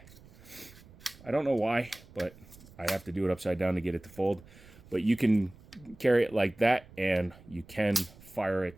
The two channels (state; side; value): noise; right; rumble, 22 dB below the sound